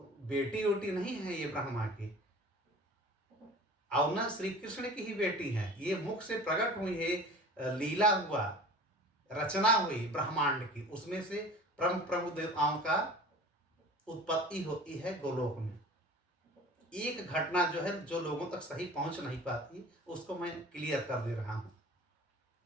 वोटी नहीं है ये ब्रह्मा की, और न श्री कृष्ण की ही बेटी है। ये मुख से प्रकट हुई है, लीला हुआ, रचना हुई ब्रह्मांड की, उसमें से प्रमुख प्रमुख देवताओं का उत्पत्ति होती है गोलोक में। एक घटना जो है जो लोगों तक सही पहुंच नहीं पाती, उसको मैं क्लियर कर दे रहा हूं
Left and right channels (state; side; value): normal; both; correlation 0.41